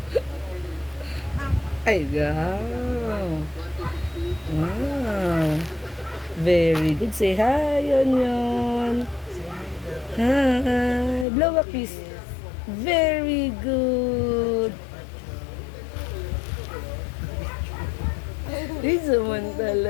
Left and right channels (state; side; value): drops out; right; at 11.2 s